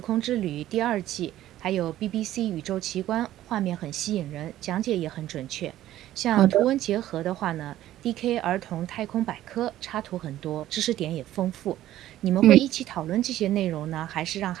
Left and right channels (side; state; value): left; quieter; 13.6 dB